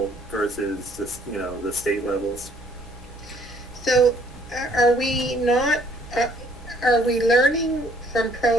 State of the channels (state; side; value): normal; both; correlation 0.62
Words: versus the, you know, the state levels. So are we not, are we learning from